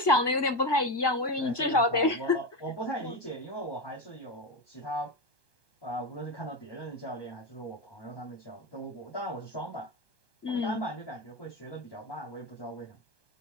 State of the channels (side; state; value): right; late; 1.2 ms